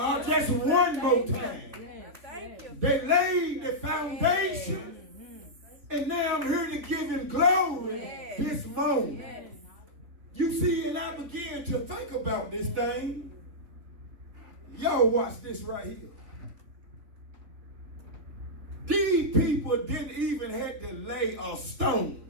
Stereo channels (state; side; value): late; left; 3.3 ms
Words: Just one more time. Thank you. They laid the foundation, and now I'm here to give him glory this moment. Yes. You see, and I began to think about this thing. Y'all watch this right here. These people didn't even have to lay a